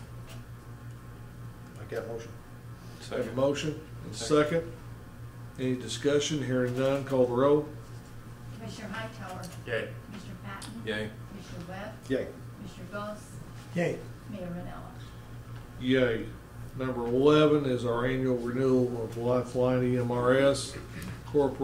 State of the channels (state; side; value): identical; both; correlation 1.00